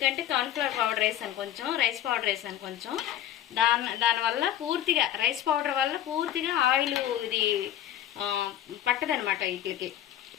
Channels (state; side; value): quieter; right; 11.4 dB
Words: కార్న్ఫ్లవర్ పౌడర్ వేసాను కొంచెం, రైస్ పౌడర్ వేసాను కొంచెం, దానివల్ల పూర్తిగా రైస్ పౌడర్ వల్ల పూర్తిగా ఆయిల్ ఇది పట్టదనమాట, వీటికి